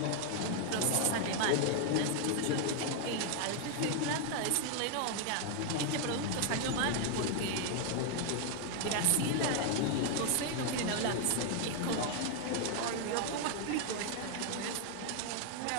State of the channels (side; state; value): both; different; correlation 0.00